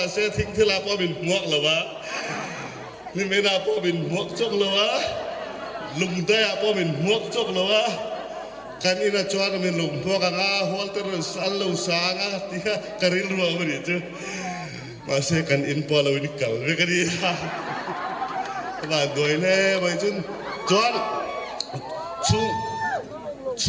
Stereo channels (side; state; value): both; identical; correlation 1.00